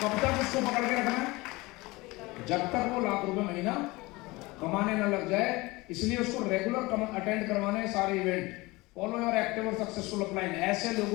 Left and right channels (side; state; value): right; quieter; 22.3 dB